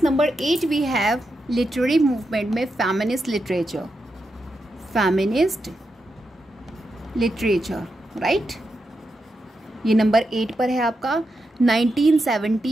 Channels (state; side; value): normal; both; correlation 0.86